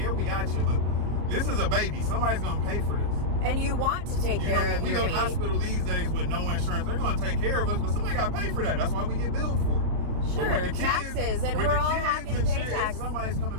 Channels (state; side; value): late; left; 34 ms